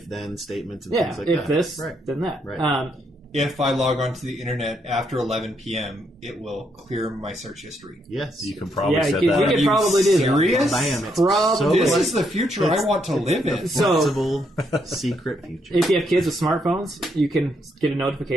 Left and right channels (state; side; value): normal; both; correlation 0.76